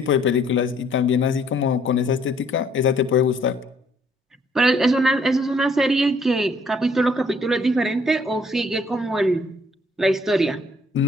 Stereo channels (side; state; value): both; normal; correlation 0.63